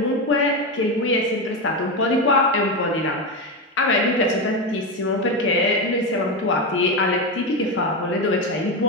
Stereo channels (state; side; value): normal; both; correlation 0.14